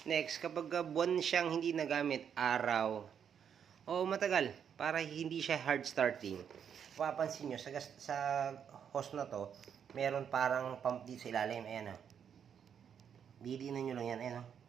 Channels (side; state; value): left; quieter; 8.0 dB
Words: Next, kapag buwan siyang hindi nagamit, araw, o matagal, para hindi siya hard starting, papansin nyo, sa hose na to, meron parang pump dito sa ilalim. Ayan, o. Didiinan nyo lang yan, ayan, o.